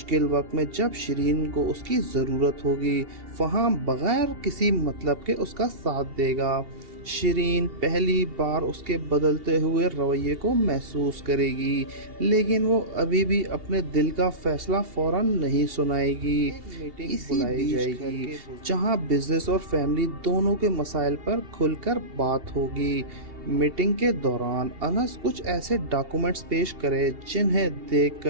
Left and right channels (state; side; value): late; left; 2.8 ms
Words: وقت میں جب شیرین کو اس کی ضرورت ہوگی فہم بغیر کسی مطلب کے اس کا ساتھ دے گا۔ شیرین پہلی بار اس کے بدلتے ہوئے رویے کو محسوس کرے گی لیکن وہ ابھی بھی اپنے دل کا فیصلہ فوراً نہیں سنائے گی۔ میٹنگ بلائی جائے گی جہاں بزنس اور فیملی دونوں کے مسائل پر کھل کر بات ہوگی۔ میٹنگ کے دوران انس کچھ ایسے ڈاکومنٹس پیش کرے جنہیں دیکھ